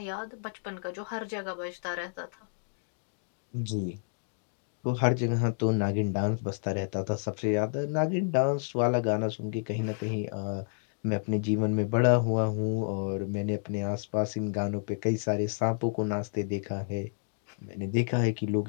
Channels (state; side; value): silent; right; digital silence